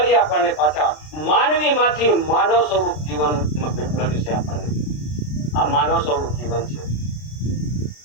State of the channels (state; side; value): late; right; 33 ms